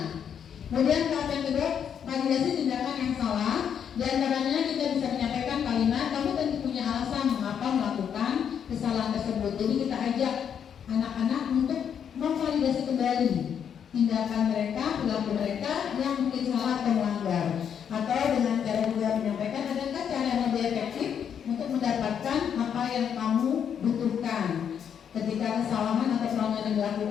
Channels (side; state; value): right; quieter; 8.1 dB